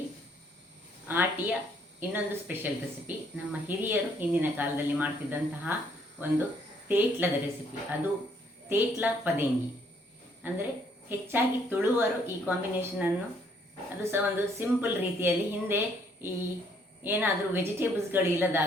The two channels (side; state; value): both; normal; correlation 0.67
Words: ಆಟಿಯ ಇನ್ನೊಂದು ಸ್ಪೆಷಲ್ ರೆಸಿಪಿ. ನಮ್ಮ ಹಿರಿಯರು ಹಿಂದಿನ ಕಾಲದಲ್ಲಿ ಮಾಡ್ತಿದ್ದಂತಹ ಒಂದು ತೇಟ್ಲದ ರೆಸಿಪಿ. ಅದು ತೇಟ್ಲ ಪದೇಂಗಿ. ಅಂದರೆ ಹೆಚ್ಚಾಗಿ ತುಳುವರು ಈ ಕಾಂಬಿನೇಷನನ್ನು, ಅದು ಸಹ ಒಂದು ಸಿಂಪಲ್ ರೀತಿಯಲ್ಲಿ. ಹಿಂದೆ ಈ ಏನಾದರೂ ವೆಜಿಟೇಬಲ್ಸ್ಗಳು